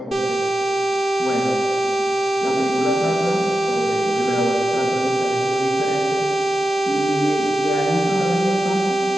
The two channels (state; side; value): normal; both; correlation 0.92